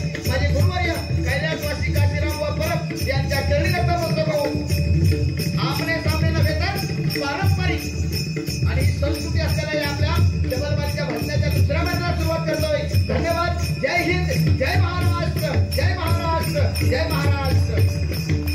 माझे गुरुवर्य कैलासवासी काशीराम व परब यांच्या चरणी नतमस्तक होऊन आमने सामने नव्हे तर पारंपरिक आणि संस्कृती असलेल्या या आपल्या जबलबारीच्या भजनाच्या दुसऱ्या मंडळाला सुरुवात करतोय। धन्यवाद। जय हिंद, जय महाराष्ट्र, जय महाराष्ट्र, जय महाराष्ट्र।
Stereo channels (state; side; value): identical; both; correlation 1.00